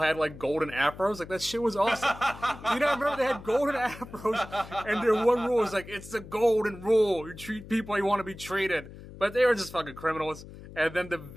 like golden afros. Like that shit was awesome. You know, I remember they had golden afros, and their one rule was like, it's the Golden Rule. You treat people how you want to be treated, but they were just fucking criminals. And then the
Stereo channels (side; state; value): left; noise; hum, 16 dB below the sound